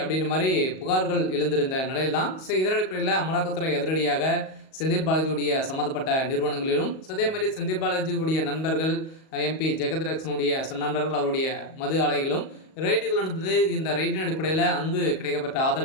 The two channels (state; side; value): late; right; 38 ms